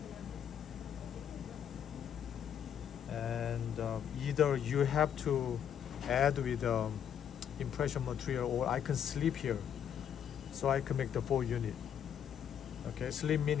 and either you have to add with impression material, or I can sleep here, so I can make the 4 unit. Okay, sleep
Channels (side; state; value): right; quieter; 8.9 dB